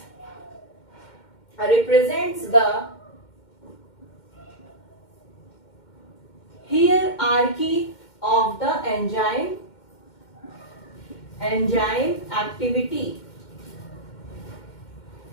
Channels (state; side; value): late; right; 2.1 ms